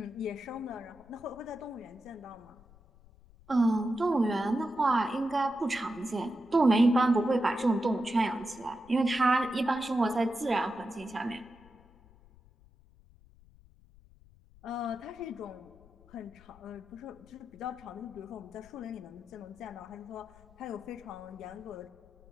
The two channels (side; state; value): left; noise; rumble, 25 dB below the sound